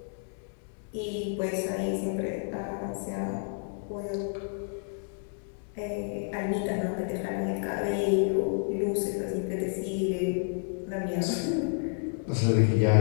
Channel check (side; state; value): right; silent; digital silence